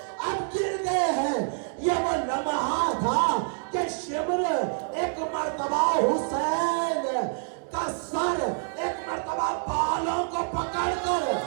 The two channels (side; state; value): left; silent; digital silence